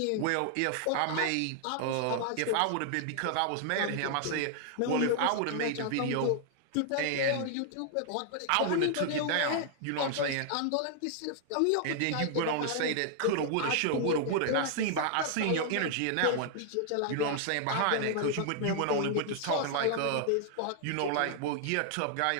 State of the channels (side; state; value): both; different; correlation 0.00